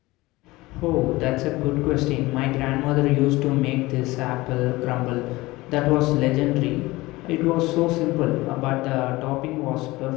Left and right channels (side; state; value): right; quieter; 20.3 dB